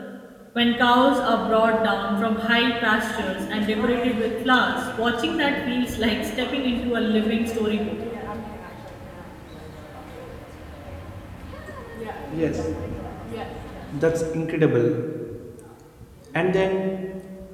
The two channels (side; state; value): both; identical; correlation 1.00